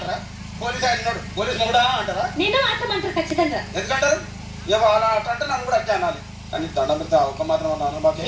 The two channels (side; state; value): both; identical; correlation 1.00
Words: పోలీస్ ఆయన ఉన్నాడు, పోలీస్ మొగుడా అంటారా? ఖచ్చితంగా ఎందుకంటారు? అలా అంటే నన్ను కూడా అట్లా అనాలి. కానీ దండం పెడితే ఒక మాత్రం అన్నాను.